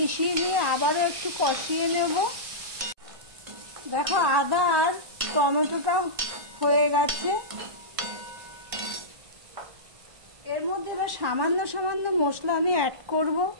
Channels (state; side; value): late; left; 1.1 ms